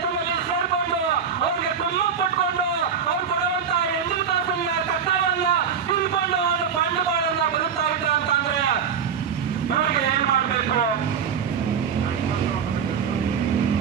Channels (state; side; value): quieter; left; 6.9 dB